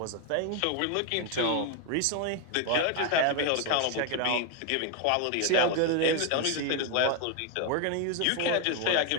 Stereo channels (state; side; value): different; both; correlation 0.01